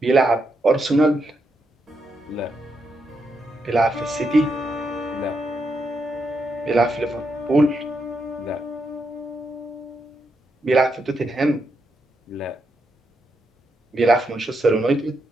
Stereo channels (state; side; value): normal; both; correlation 0.82